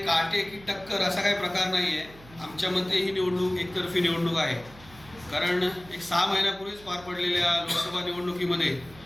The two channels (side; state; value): right; noise; hum, 21 dB below the sound